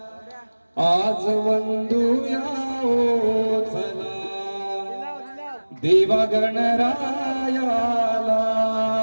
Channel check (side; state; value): both; inverted; correlation -1.00